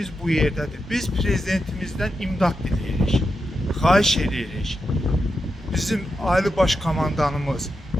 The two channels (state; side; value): normal; both; correlation 0.87